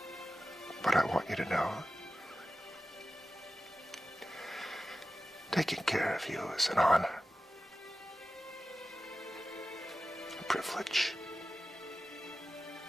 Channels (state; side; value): normal; both; correlation 0.94